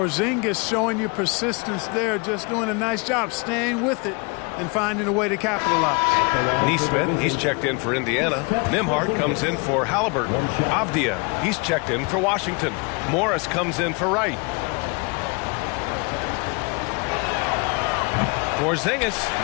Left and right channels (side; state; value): right; quieter; 31.2 dB